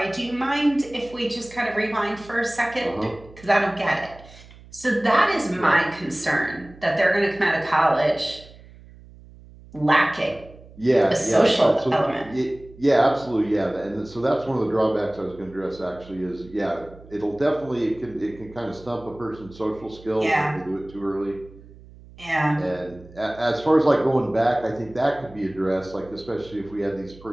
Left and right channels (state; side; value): noise; right; hum, 21 dB below the sound